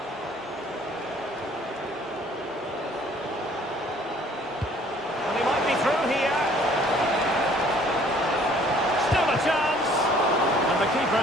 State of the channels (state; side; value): normal; both; correlation 0.57